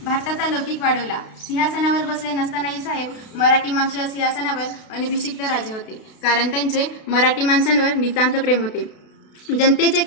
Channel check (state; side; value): late; right; 32 ms